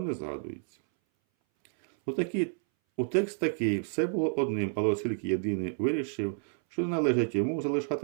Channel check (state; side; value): silent; left; 58 dB below the other